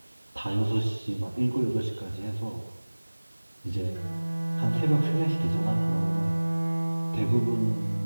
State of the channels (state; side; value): inverted; both; correlation -1.00